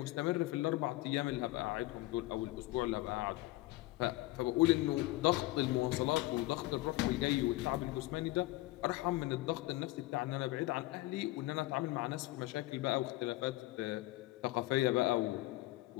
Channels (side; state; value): right; quieter; 18.8 dB